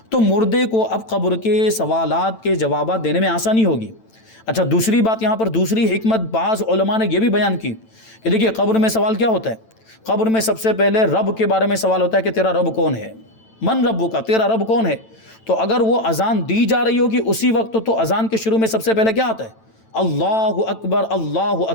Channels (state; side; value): late; right; 9.0 ms